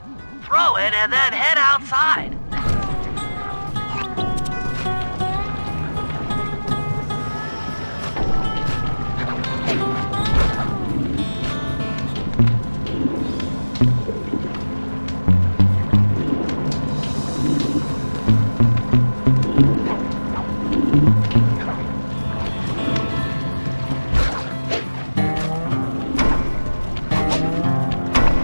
Throw it and then head outside.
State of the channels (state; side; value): inverted; both; correlation -1.00